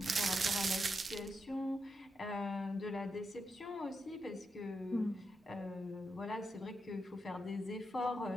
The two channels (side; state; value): both; normal; correlation 0.85